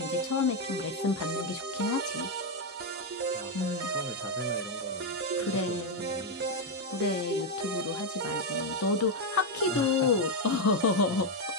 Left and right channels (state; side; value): normal; both; correlation 0.04